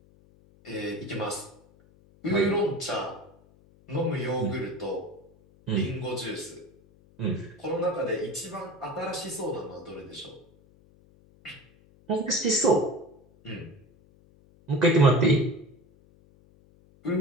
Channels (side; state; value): left; noise; hum, 28 dB below the sound